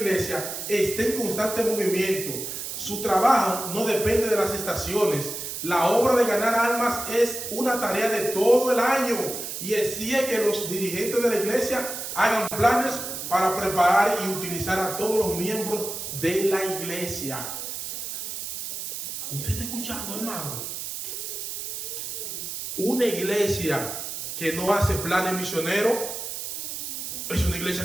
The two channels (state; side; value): noise; right; hiss, 6 dB below the sound